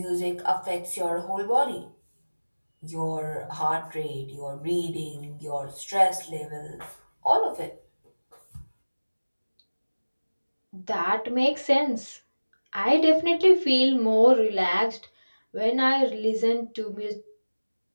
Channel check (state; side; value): inverted; both; correlation -1.00